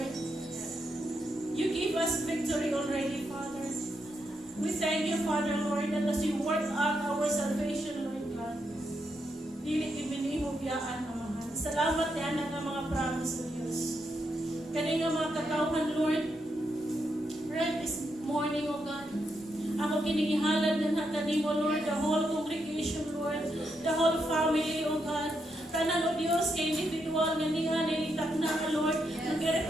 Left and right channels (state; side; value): normal; both; correlation 0.81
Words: You give us victory already, Father. We thank you, Father, Lord, that as you work out our salvation, Lord God, dili ibinihog yaan, Amahan. Salamat yan ang mga promise of Diyos. Kani nga mga kakauhan, Lord, right this morning, O God, ako kinigihalad ng kanimo, Lord, the whole congregation, Lord, the whole family, O God. Tanan, O Diyos, kay individual na niya, nilitak na, Lord,